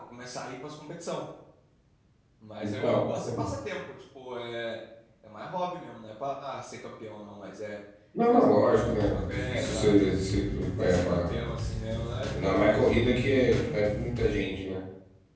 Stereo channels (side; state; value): both; identical; correlation 1.00